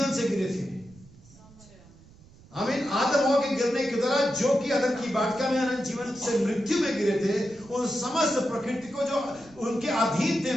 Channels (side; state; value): right; noise; rumble, 24 dB below the sound